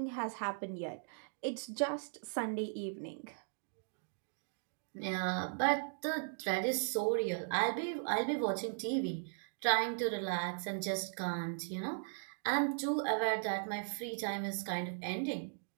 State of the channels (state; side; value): silent; left; digital silence